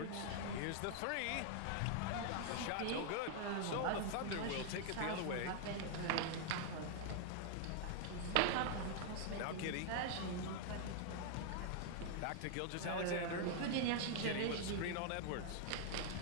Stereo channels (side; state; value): both; different; correlation 0.00